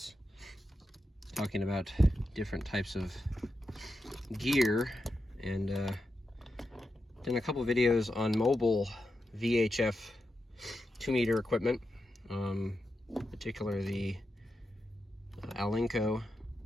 talking about different types of gear, and done a couple videos on mobile VHF 2-meter equipment, particularly the Alinco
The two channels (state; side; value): normal; both; correlation 0.88